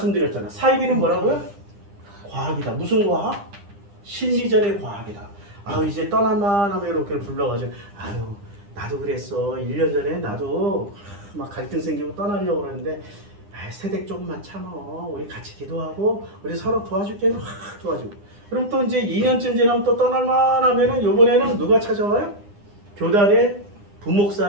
사이비는 뭐라고요? 과학이다. 무슨 과학? 심리전의 과학이다. 아유, 이제 떠날만 하면 이렇게 불러가지고, 아유, 나도 그랬어. 1년 전에 나도 막 갈등 생기고 떠나려고 그러는데, 아이, 세댁 조금만 참어. 우리 같이 기도하고 우리 서로 도와줄게. 확 도와주고. 그럼 또 이제 2년쯤 지나면 또 떠날만 하면은 이번에는 누가 찾아와요? 교단의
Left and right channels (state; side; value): late; left; 9.9 ms